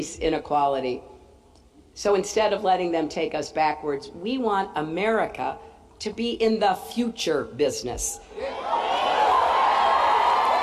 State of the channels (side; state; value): both; identical; correlation 1.00